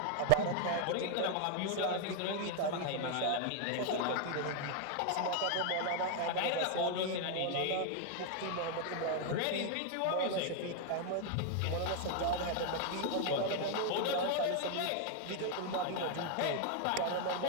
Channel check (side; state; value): both; different; correlation 0.00